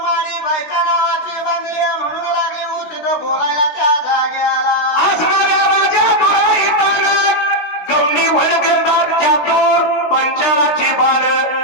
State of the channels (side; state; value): right; late; 16 ms